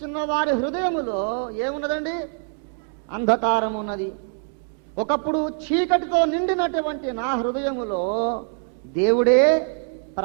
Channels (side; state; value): left; silent; 56 dB below the other